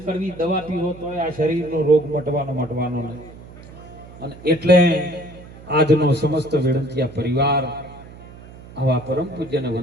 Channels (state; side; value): noise; right; hum, 18 dB below the sound